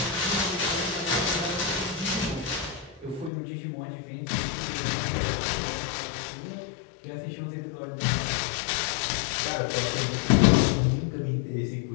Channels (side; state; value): right; drops out; at 3.3 s